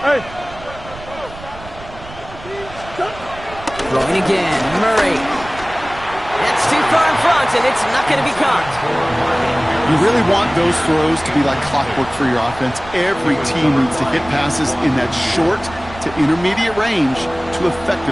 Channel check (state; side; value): noise; right; rumble, 17 dB below the sound